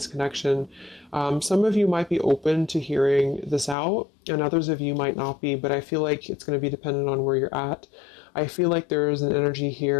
connection. Some of you might be open to hearing this out, and others of you might not be, but I feel like it's going to be dependent on where you're at. I feel like there is an energy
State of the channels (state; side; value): drops out; right; at 3.8 s